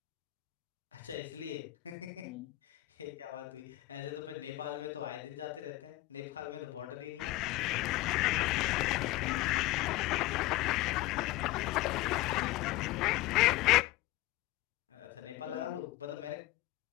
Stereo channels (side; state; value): right; quieter; 18.1 dB